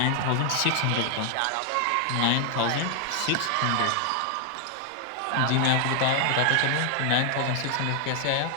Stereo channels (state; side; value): different; both; correlation 0.00